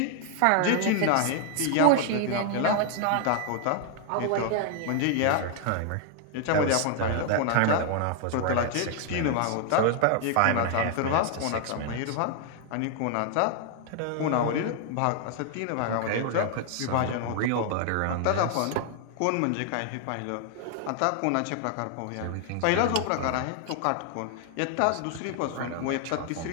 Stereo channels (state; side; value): different; both; correlation 0.00